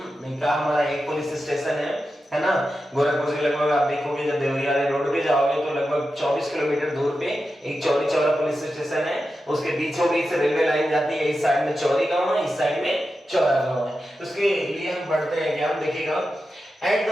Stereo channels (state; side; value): normal; both; correlation 0.90